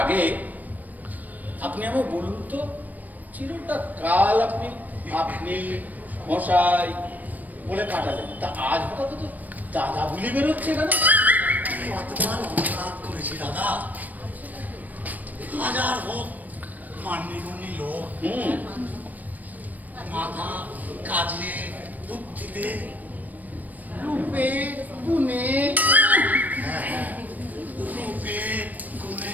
আগে আপনি আমায় বলুন তো, চিরটা কাল আপনি আপনি মশাই বলে কাটালেন, তা আজ হঠাৎ তো দাদা বুলি বেরোচ্ছে কেন? কতবার অনুরাগ করেছি দাদা, হাজার হোক মান্যগণ্যি লোক, মাথা কাজে বুদ্ধিতে রূপে গুণে, রূপে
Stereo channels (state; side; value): late; left; 0.082 ms